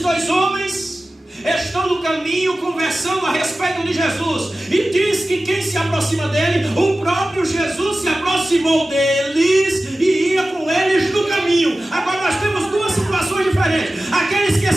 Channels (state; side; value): normal; both; correlation 0.96